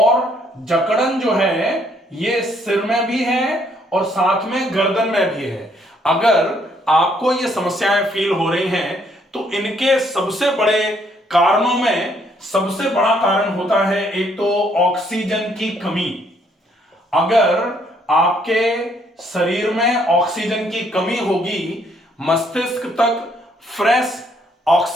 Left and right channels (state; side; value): normal; both; correlation 0.68